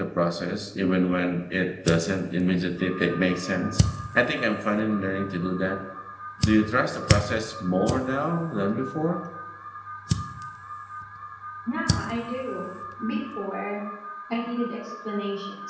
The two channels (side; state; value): both; identical; correlation 1.00